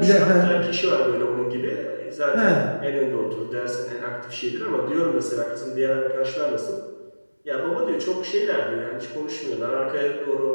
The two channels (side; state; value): both; inverted; correlation -1.00